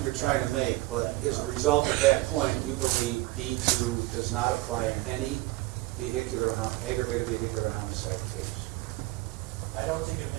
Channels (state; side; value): quieter; left; 19.8 dB